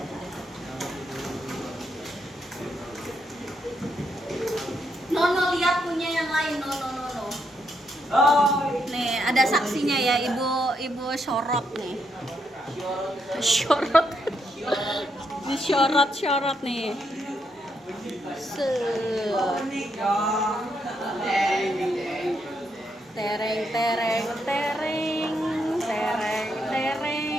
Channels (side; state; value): both; normal; correlation 0.78